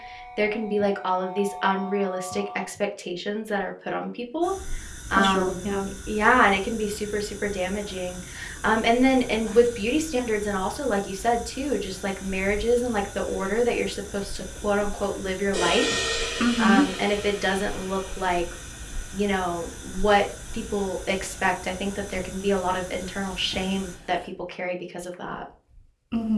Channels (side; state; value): both; identical; correlation 1.00